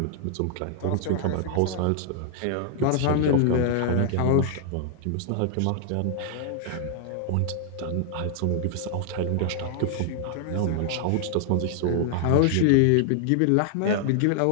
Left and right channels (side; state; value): both; different; correlation 0.00